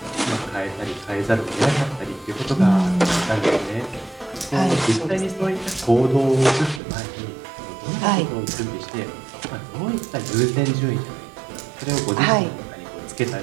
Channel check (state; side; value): drops out; left; at 6.8 s